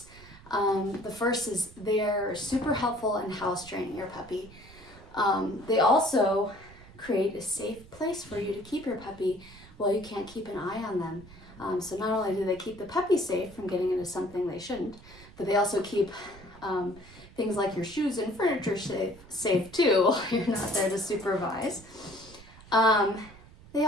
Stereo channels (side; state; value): right; noise; rumble, 21 dB below the sound